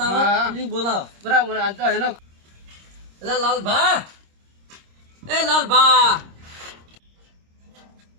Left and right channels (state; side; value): late; left; 26 ms